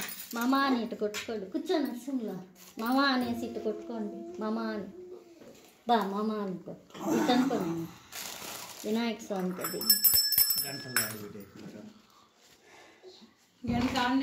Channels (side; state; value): both; identical; correlation 1.00